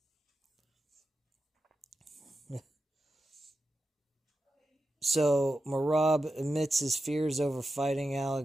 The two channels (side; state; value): both; normal; correlation 0.90